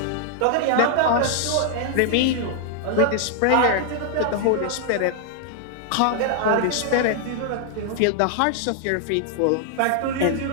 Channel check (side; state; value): both; different; correlation 0.00